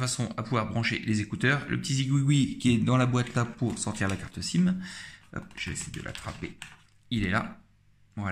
à pouvoir brancher les écouteurs. Le petit zigouigoui qui est dans la boîte là pour sortir la carte SIM. Hop, je vais essayer de l'attraper. Il est là.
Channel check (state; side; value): identical; both; correlation 1.00